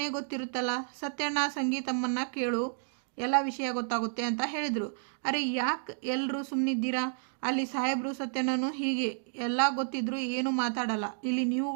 ಗೊತ್ತಿರುತ್ತಲ್ಲ. ಸತ್ಯಣ್ಣ, ಸಂಗೀತಮ್ಮನ್ನ ಕೇಳು, ಎಲ್ಲ ವಿಷಯ ಗೊತ್ತಾಗುತ್ತೆ ಅಂತ ಹೇಳಿದರು. ಅರೆ ಯಾಕೆ ಎಲ್ಲರೂ ಸುಮ್ಮನಿದ್ದೀರಾ? ಅಲ್ಲಿ ಸಾಹೇಬರು ಸತ್ಯನೂ ಹೀಗೆ ಎಲ್ಲ ಗೊತ್ತಿದ್ರು ಏನು ಮಾತಾಡಲ್ಲ. ಇಲ್ಲಿ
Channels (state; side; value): silent; left; digital silence